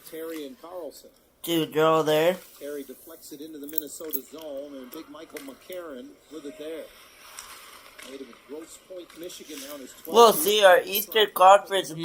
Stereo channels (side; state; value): both; identical; correlation 1.00